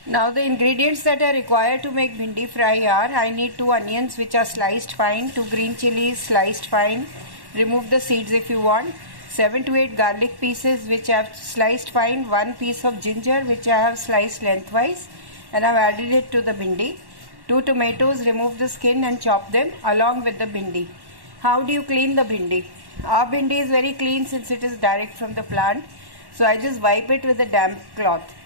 Now the ingredients that are required to make bhindi fry are: I need 2 onions which are sliced fine, 2 green chilies sliced fine, remove the seeds if you want, 7 to 8 garlic pieces which I have sliced fine, 1 piece of ginger which I have sliced lengthwise and I have added it to the bhindi, 2 tomatoes, remove the skin and chop them along with the bhindi. How do you clean the bhindi? Our bhindi is very clean since it is direct from the plant, so I just wipe it with a damp cloth.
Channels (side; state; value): left; late; 1.1 ms